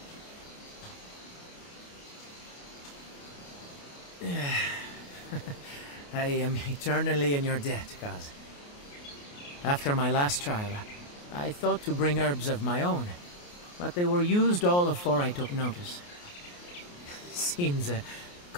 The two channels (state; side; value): late; right; 28 ms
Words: I am eternally in your debt, Kaz. After my last trial, I thought to bring herbs of my own, but they were used all afore I took notice. Seems